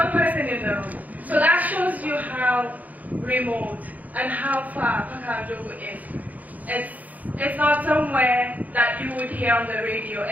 person in the room. So that shows you how remote and how far Pakao Jogu is. It's not somewhere that you would hear on the radio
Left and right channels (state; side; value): late; left; 0.078 ms